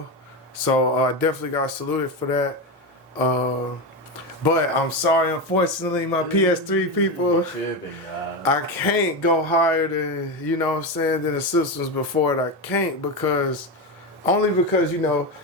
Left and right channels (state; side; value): normal; both; correlation 0.15